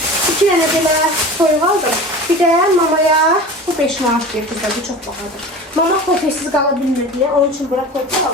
2 tane belə toyuq aldım. Bir də mamaya bu 5 manat deyir kızlar, bu çox bahadır. Mama pofesiz qala bilmir deyə, onun üçün bura toyuq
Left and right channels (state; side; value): normal; both; correlation 0.35